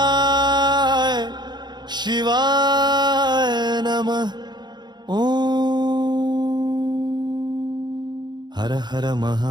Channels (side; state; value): left; late; 0.21 ms